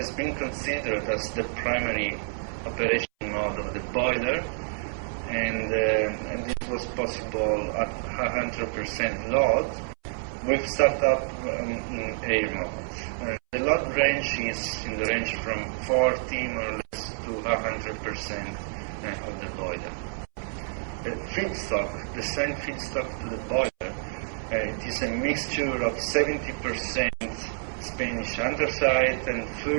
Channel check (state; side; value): silent; left; 59 dB below the other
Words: been considered as the primary operation mode of the boiler, and this was possible at 100% load with startup in air mode. The load range is in the range from 40 more or less to 100% of the boiler. The feedstock, the same feedstock to the boiler, it is a mixture of 70% Spanish anthracite and